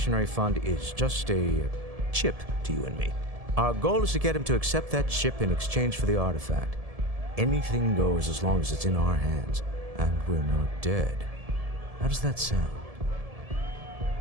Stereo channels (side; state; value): left; late; 1.7 ms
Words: Fund is just a chip to you and me. Our goal is to get him to accept that chip in exchange for the artifact. Anything goes as long as it's in our hands, and we're not dead. How does that sound?